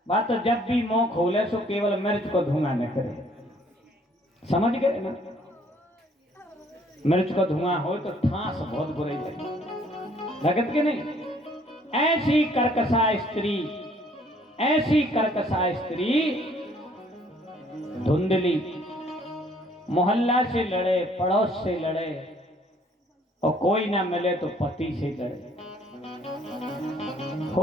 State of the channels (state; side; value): normal; both; correlation 0.61